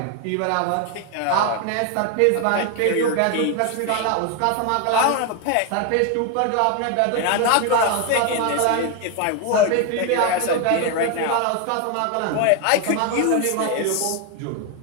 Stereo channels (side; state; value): both; different; correlation 0.01